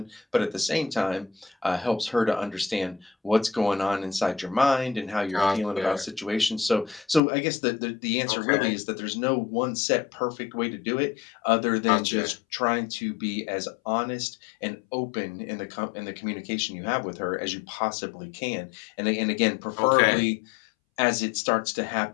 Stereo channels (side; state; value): right; drops out; at 7.2 s